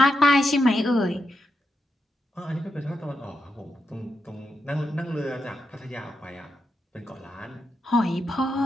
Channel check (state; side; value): normal; both; correlation 0.85